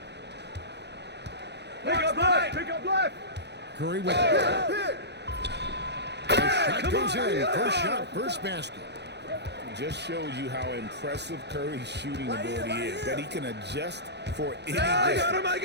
Pick up left. Pick up left. Curry with it. The shot goes in. First shot, first basket. Just shows you how impressive Curry's shooting ability is. That he can adjust for any I distance. got him. I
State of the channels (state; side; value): late; left; 0.50 ms